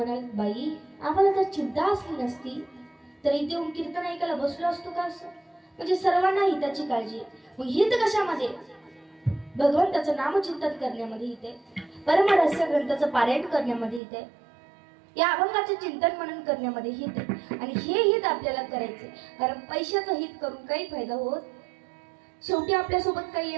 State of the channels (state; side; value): drops out; left; at 14.0 s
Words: बाई आम्हाला जर चिंता असली नसती तर इथे येऊन कीर्तन ऐकायला बसलो असतो का असं. म्हणजे सर्वांना हिताची काळजी. मग हित कशामध्ये, भगवंताचं नामचिंतन करण्यामध्ये हित आहे, परमरहस्य ग्रंथाचं पारायण करण्यामध्ये हित आहे, या अभंगाचे चिंतन मनन करण्यामध्ये हित आहे. आणि हे हित आपल्याला करायचे, कारण पैशाचं हित करून काही फायदा होत. शेवटी आपल्यासोबत काही